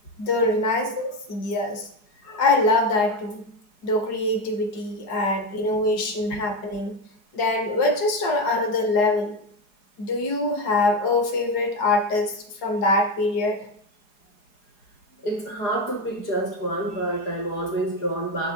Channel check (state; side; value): late; right; 4.8 ms